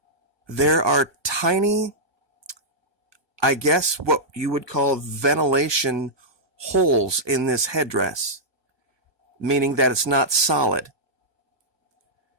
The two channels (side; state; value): left; late; 1.2 ms